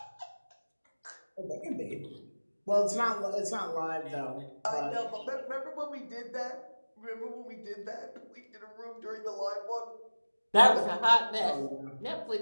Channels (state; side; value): inverted; both; correlation -1.00